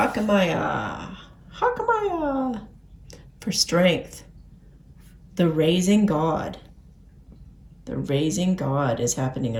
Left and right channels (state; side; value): identical; both; correlation 1.00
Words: For strength. The raising God. The raising God is happening